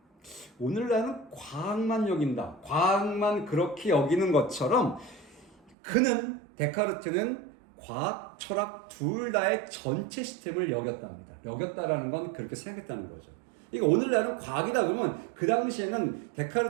오늘날은 과학만 여긴다. 과학만 그렇게 여기는 것처럼 그는, 데카르트는 과학, 철학 둘 다의 전체 시스템을 여겼답니다. 여겼다라는 건 그렇게 생각했다는 거죠. 그러니까 오늘날은 과학이다 그러면 그 당시에는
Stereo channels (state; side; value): drops out; left; at 5.8 s